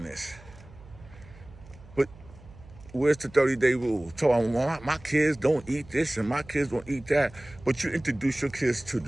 this. But where's the 30-day rule? So my kids don't eat this and my kids don't eat that. But you introduce your kids to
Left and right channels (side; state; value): right; noise; hum, 21 dB below the sound